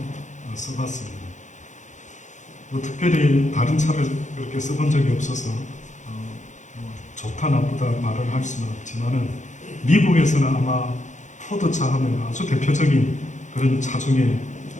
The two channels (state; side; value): late; right; 0.35 ms